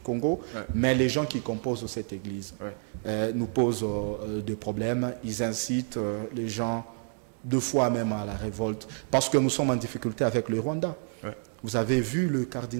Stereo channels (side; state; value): left; silent; 59 dB below the other